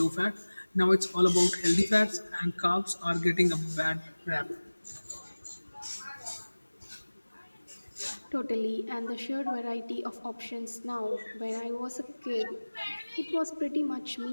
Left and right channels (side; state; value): both; inverted; correlation -1.00